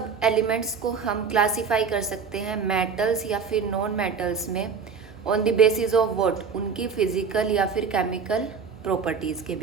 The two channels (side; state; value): left; quieter; 5.8 dB